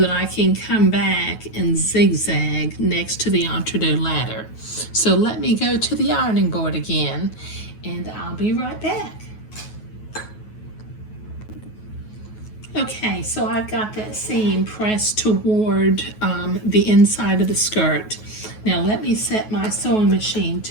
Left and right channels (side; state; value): right; late; 9.3 ms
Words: I can come back and zigzag next to the entre-deux ladder. So let me go to the ironing board again and I'll be right back. Okay, so I've got that seam pressed toward the inside of the skirt. Now let me set my sewing machine